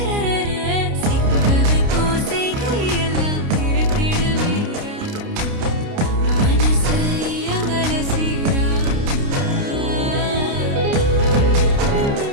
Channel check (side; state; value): left; late; 29 ms